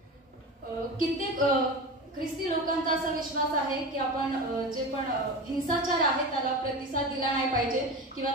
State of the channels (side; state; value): both; normal; correlation 0.28